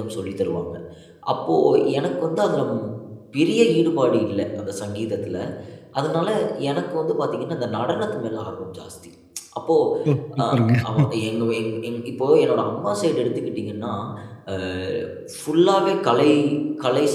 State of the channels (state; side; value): identical; both; correlation 1.00